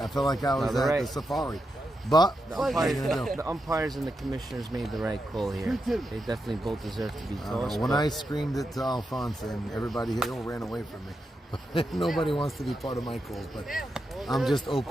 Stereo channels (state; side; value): normal; both; correlation 0.86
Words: felt like I was No, at they're the right. safari. But the what are you gonna do? the umpires and the commissioners made the right call here. They definitely both deserve to be tossed. When but- I screamed it to Alphonse and everybody here ran away from me. Nobody wants to be part of my calls, but I'm just